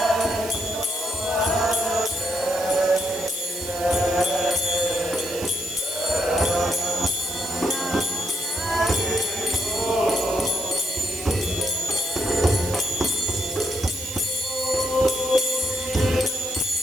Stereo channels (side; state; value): right; noise; hiss, 10 dB below the sound